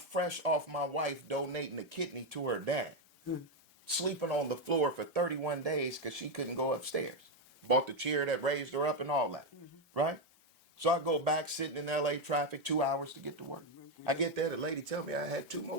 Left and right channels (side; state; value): both; normal; correlation 0.06